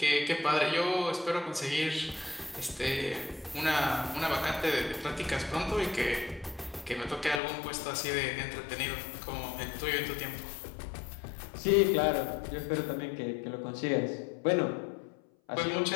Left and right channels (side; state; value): right; drops out; at 7.4 s